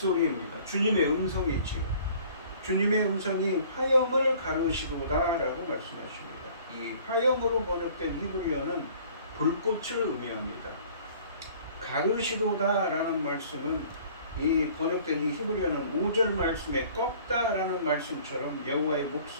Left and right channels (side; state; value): both; inverted; correlation -0.52